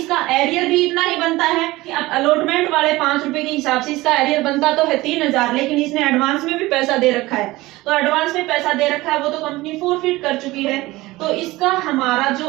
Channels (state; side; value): quieter; left; 19.4 dB